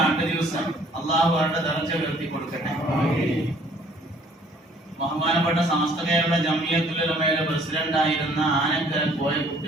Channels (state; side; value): normal; both; correlation 0.58